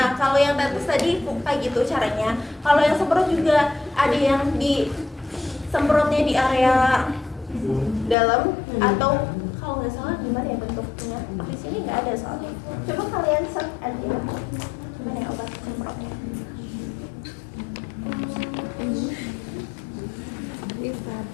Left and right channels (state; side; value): drops out; right; at 8.2 s